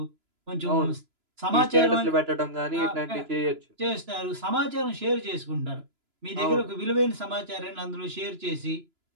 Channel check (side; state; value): left; late; 3.0 ms